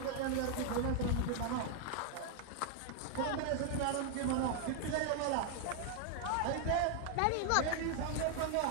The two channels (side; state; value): both; different; correlation 0.00